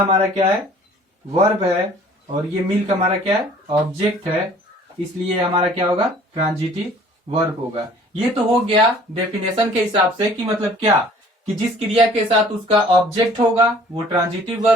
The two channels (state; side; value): normal; both; correlation 0.52